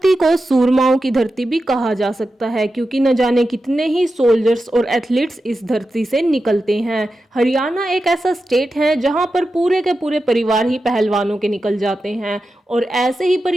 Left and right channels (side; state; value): both; normal; correlation 0.91